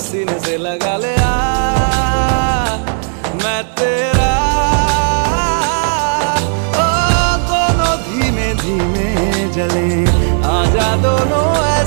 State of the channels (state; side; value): silent; left; 65 dB below the other